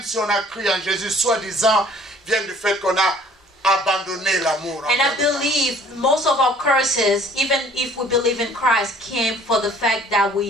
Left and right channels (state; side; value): normal; both; correlation 0.55